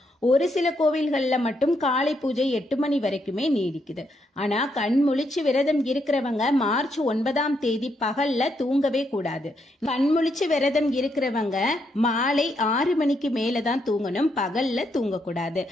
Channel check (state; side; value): normal; both; correlation 0.77